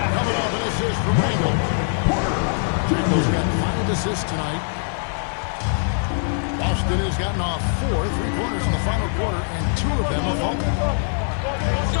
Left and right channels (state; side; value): silent; right; 64 dB below the other